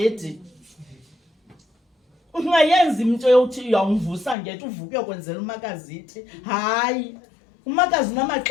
Ungayenza into yokuthi uyawumvusa ngethi uvuke uyokwenzela umakazi ithi. Hayi, umakazi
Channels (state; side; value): drops out; right; at 4.4 s